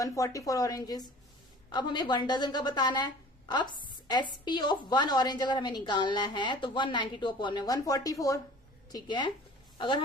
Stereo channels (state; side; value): normal; both; correlation 0.46